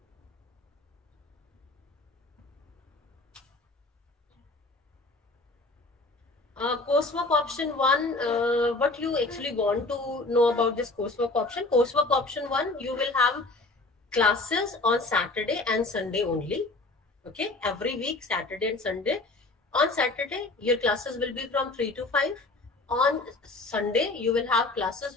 Coursework option 1, what you actually want to know about this coursework option? Coursework option 1, you will have classes on Saturday and Sunday only. Okay, every week, Saturday and Sunday. On Saturday, your classes will be from 3 to 5. On Sunday, you will have classes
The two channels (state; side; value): quieter; right; 3.2 dB